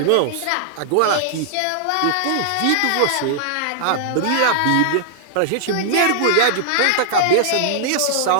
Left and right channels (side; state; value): both; different; correlation -0.01